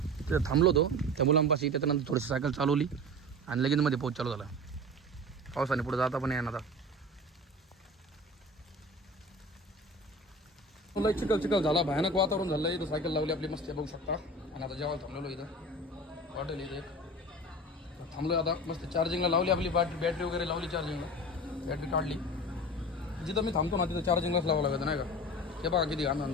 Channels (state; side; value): normal; both; correlation 0.34